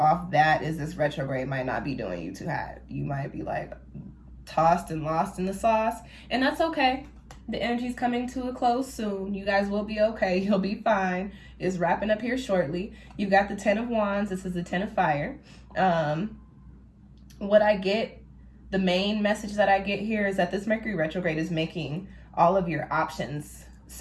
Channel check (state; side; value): identical; both; correlation 1.00